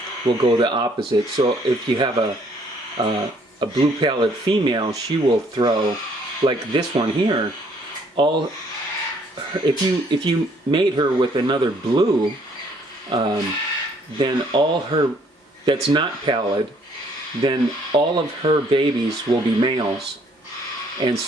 will go the opposite. So if you have a blue pallid female, she will throw, like this one here, if you mate her with another blue, then all her, that's not pallid, then all of her babies will be males. And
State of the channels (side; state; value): both; normal; correlation 0.64